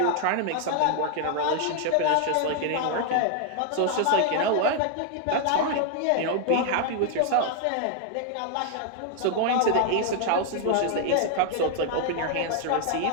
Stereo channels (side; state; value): both; different; correlation 0.00